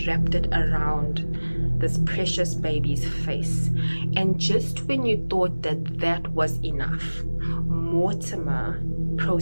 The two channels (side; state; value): both; inverted; correlation -1.00